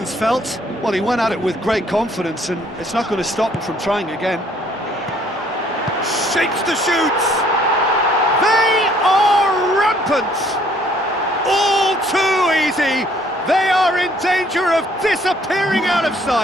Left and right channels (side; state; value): both; normal; correlation 0.62